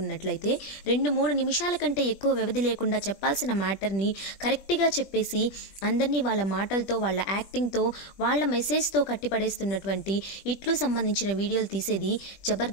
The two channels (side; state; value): right; late; 20 ms